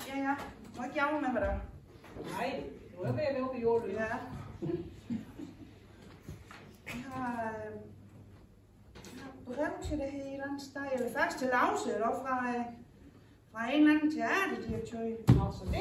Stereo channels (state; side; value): identical; both; correlation 1.00